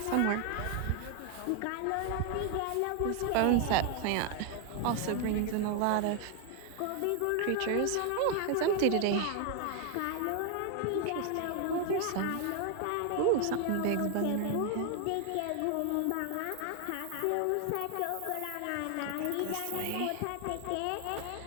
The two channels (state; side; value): different; both; correlation 0.00